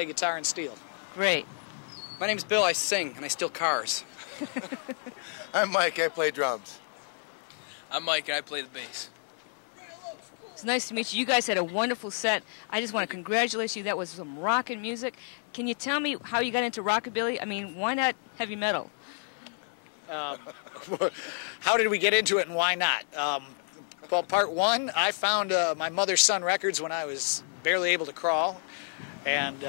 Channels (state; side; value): silent; right; 58 dB below the other